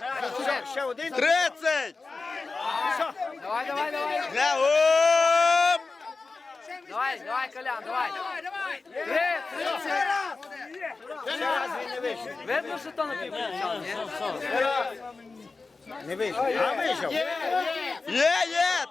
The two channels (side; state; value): right; quieter; 3.9 dB